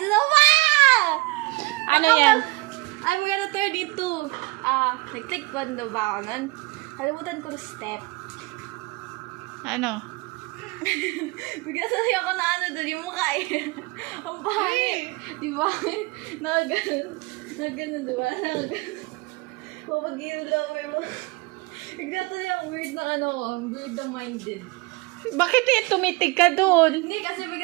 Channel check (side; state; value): left; quieter; 24.6 dB